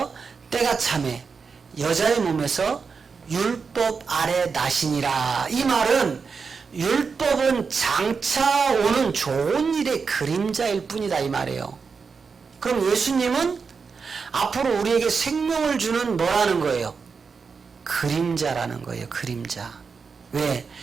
때가 참에 여자의 몸에서 율법 아래 나시니라. 이 말은 율법은 장차 오는 좋은 일의 그림자일 뿐이다 이 말이에요. 그럼 예수님은 앞으로 우리에게 생명을 주는 뭐라는 거예요? 그림자라는 거예요. 그림자. 왜?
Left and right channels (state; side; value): quieter; left; 5.3 dB